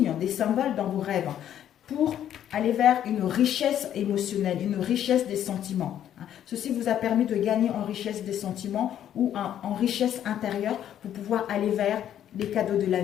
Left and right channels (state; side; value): quieter; right; 10.6 dB